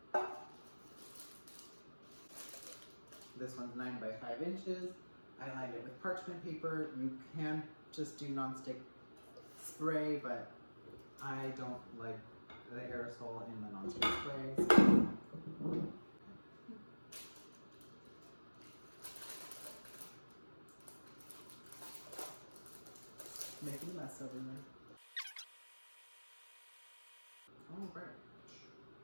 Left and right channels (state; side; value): inverted; both; correlation -1.00